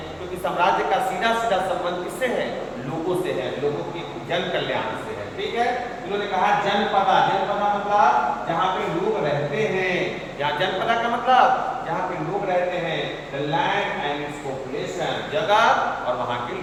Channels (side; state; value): both; identical; correlation 1.00